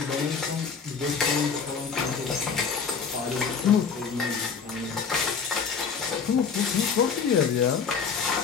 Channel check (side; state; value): right; quieter; 5.9 dB